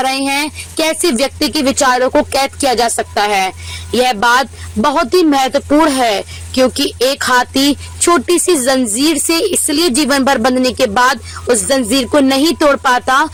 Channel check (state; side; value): identical; both; correlation 1.00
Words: रहे हैं कैसे व्यक्ति के विचारों को कैद किया जा सकता है। यह बात बहुत ही महत्वपूर्ण है क्योंकि एक हाथी छोटी सी जंजीर से इसलिए जीवन भर बंधने के बाद उस जंजीर को नहीं तोड़ पाता